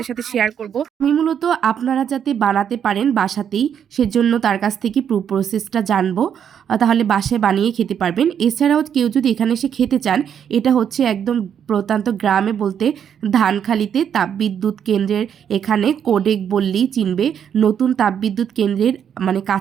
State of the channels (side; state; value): left; quieter; 8.5 dB